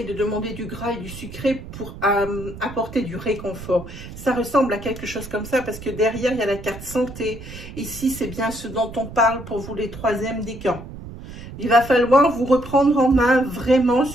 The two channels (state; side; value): noise; right; rumble, 13 dB below the sound